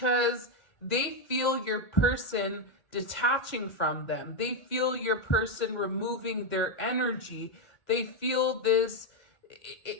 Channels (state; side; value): late; right; 1.6 ms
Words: they feel your person detaching from them. They feel your person removing their energy. They feel this,